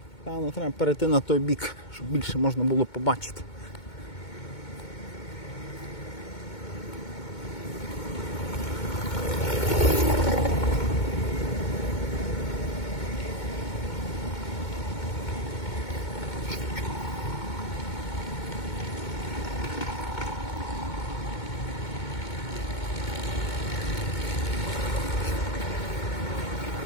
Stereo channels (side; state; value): right; late; 2.2 ms